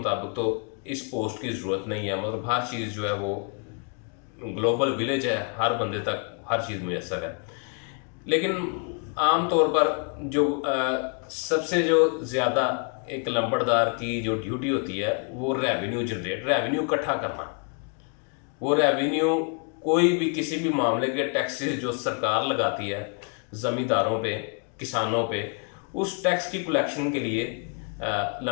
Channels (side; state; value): right; quieter; 39.3 dB